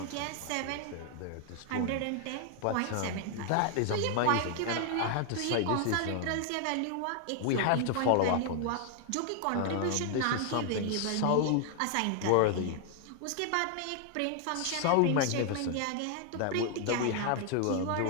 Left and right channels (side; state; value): both; different; correlation 0.00